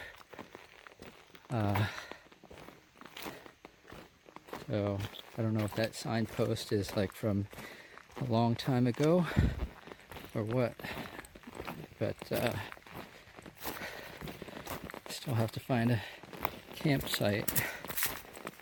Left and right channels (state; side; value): identical; both; correlation 1.00